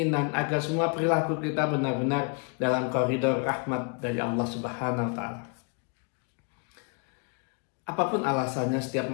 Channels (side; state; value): right; quieter; 36.6 dB